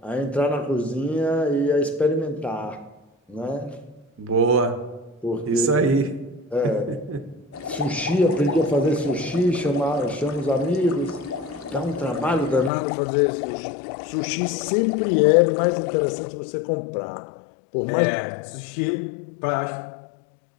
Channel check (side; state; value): right; drops out; at 12.7 s